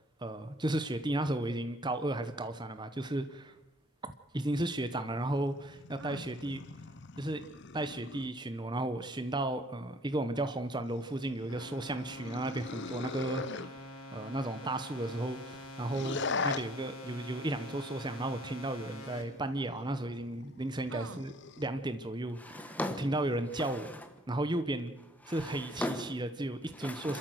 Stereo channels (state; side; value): normal; both; correlation 0.59